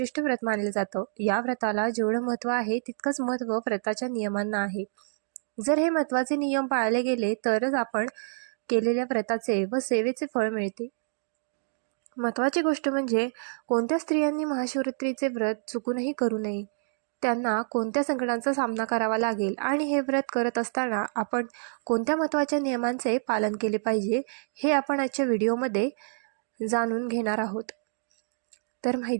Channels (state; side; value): silent; left; digital silence